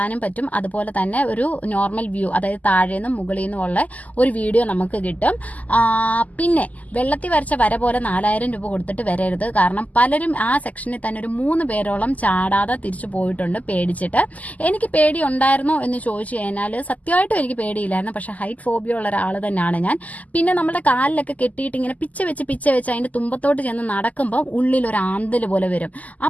പറ്റും. അതുപോലെ തന്നെ ഒരു നോർമൽ വ്യൂ, അതായത് താഴെ നിന്നും മുകളിൽ നിന്നും ഉള്ള ഒരു വീഡിയോ നമുക്ക് കിട്ടും. പിന്നെ വെള്ളത്തിൽ വരച്ച വര പോലെ 4000 രൂപ കൊടുത്തിട്ട് വരരുത്. കാരണം പലരും ആ സെക്ഷനിൽ തന്നെ ഒരു 3 പേരോളം ചാടാതെ തിരിച്ചു പോയിട്ടുണ്ട് പേടിച്ചിട്ട്. എനിക്ക് പേടി ഉണ്ടായിരുന്നോ എന്ന് ചോദിച്ചു കഴിഞ്ഞാൽ സത്യമായിട്ടും എനിക്ക് പേടിയില്ലായിരുന്നു. പക്ഷെ ഹൈറ്റ് ഫോബിയ ഉള്ള ഒരാൾ തന്നെയാണ് ഞാൻ. പിന്നെ നമ്മുടെ കാലിലൊക്കെ കെട്ടിയിട്ട് ഇങ്ങനെ പിച്ച വെച്ച് അതിന്റെ തുമ്പത്തോട്ട് ചെന്ന് നടക്കുമ്പോൾ ഉള്ളിൽ ഒരു ആന്തൽ പോലെ വരും.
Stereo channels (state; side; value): late; right; 0.076 ms